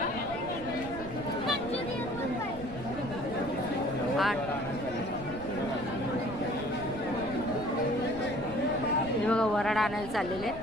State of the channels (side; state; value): right; noise; rumble, 13 dB below the sound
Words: 8 हे बघा वराड आणायला चाललेले